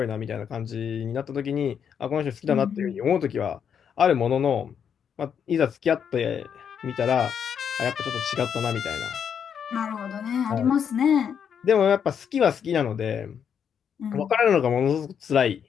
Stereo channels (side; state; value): right; quieter; 7.8 dB